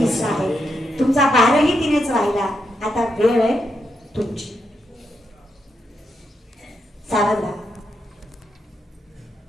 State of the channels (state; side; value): normal; both; correlation 0.82